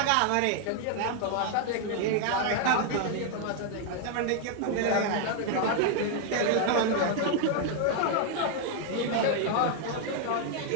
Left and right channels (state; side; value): different; both; correlation 0.00